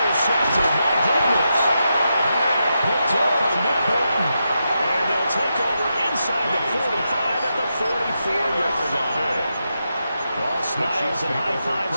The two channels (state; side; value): inverted; both; correlation -0.86